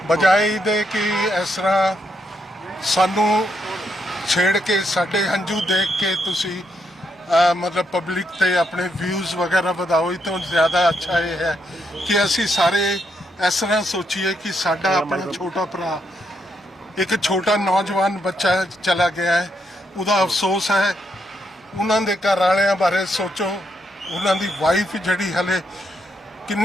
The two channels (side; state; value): both; normal; correlation 0.78